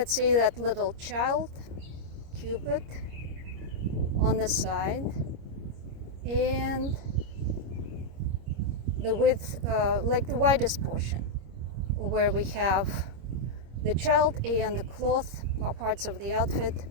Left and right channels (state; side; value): late; left; 25 ms